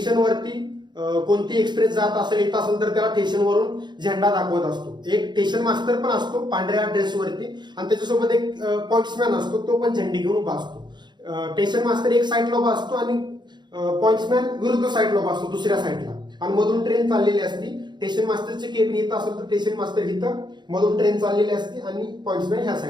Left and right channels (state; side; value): late; left; 0.21 ms